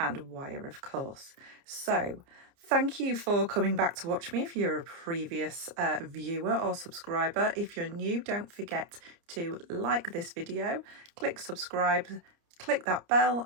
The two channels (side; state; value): left; late; 30 ms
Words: wire, of course. So thank you for coming back to watch me if you're a previous viewer or subscriber. If you're new, don't forget to like this video, click subscribe, click that bell